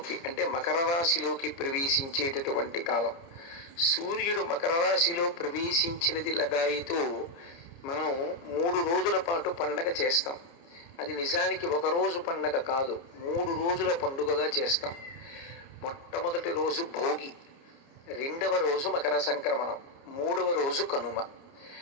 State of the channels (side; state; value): right; late; 29 ms